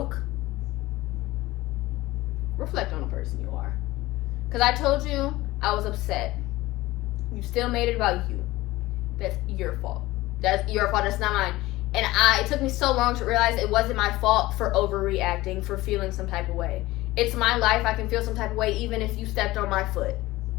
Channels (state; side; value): quieter; right; 18.4 dB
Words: reflect on the person you are. Because I told you I was upset. You still made it about you. That's your fault. That's your fault. That's not mine. And it took me so long to realize it wasn't my fault for overreacting, for feeling some type of way. It's my life. I can feel some type of way even if you stepped on my foot.